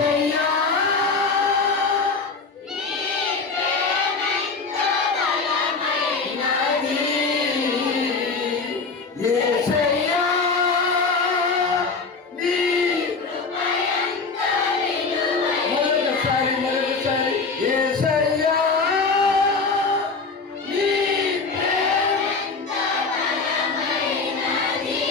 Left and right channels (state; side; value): quieter; right; 4.4 dB